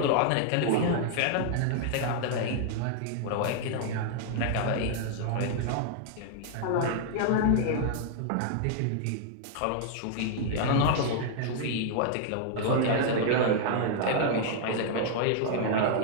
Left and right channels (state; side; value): different; both; correlation -0.01